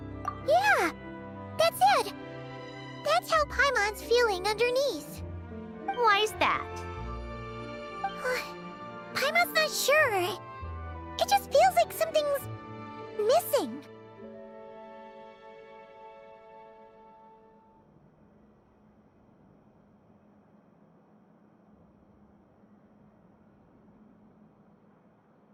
Yeah, that's it. That's how Paimon's feeling underneath. Why's that? Paimon's not sure. It just feels like something's missing.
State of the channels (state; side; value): identical; both; correlation 1.00